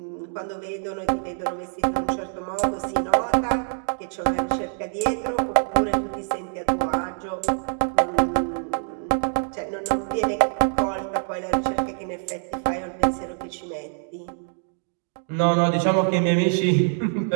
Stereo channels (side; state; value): left; silent; 62 dB below the other